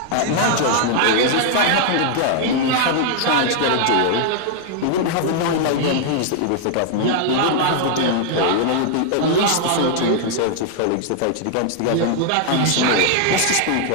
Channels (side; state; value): both; different; correlation -0.01